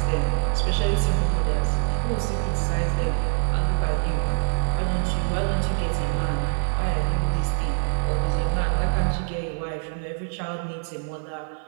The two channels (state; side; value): silent; left; 56 dB below the other